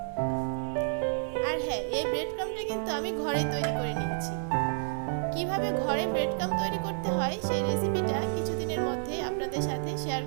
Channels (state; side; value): silent; left; digital silence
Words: আর হ্যাঁ, এই ব্রেড ক্রাম্পটা কিন্তু আমি ঘরে তৈরি করে নিয়েছি। কিভাবে ঘরে ব্রেড ক্রাম্প তৈরি করতে হয় সেই রেসিপিটা কিছুদিনের মধ্যে আপনাদের সাথে শেয়ার